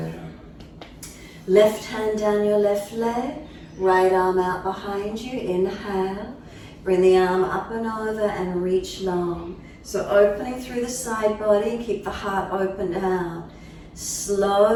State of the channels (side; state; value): both; identical; correlation 1.00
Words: Left hand down your left leg, right arm out behind you, inhale. Bring the arm up and over and reach long. So opening through the side body, keep the heart open out.